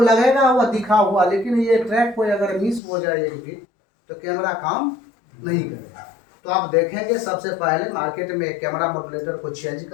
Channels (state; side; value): drops out; right; at 2.8 s